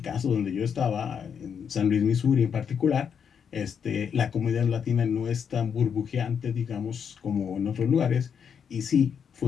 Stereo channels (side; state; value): right; quieter; 7.3 dB